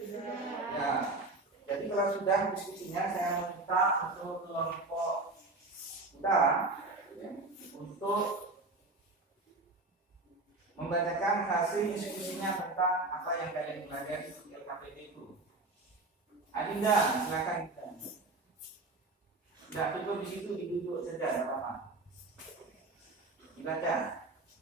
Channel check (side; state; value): left; quieter; 3.2 dB